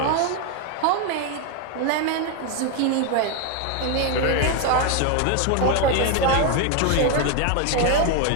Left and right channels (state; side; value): different; both; correlation 0.01